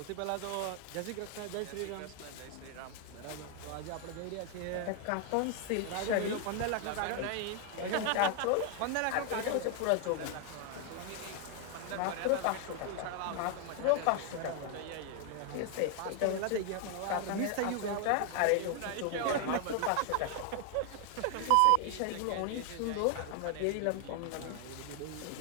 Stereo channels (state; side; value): different; both; correlation 0.00